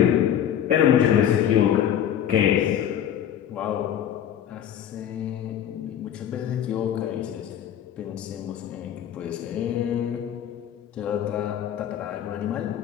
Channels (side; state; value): right; quieter; 10.0 dB